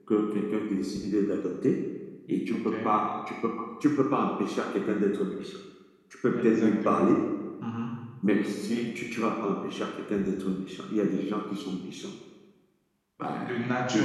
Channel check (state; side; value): identical; both; correlation 1.00